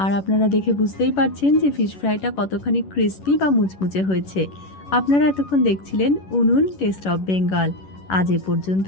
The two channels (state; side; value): late; right; 11 ms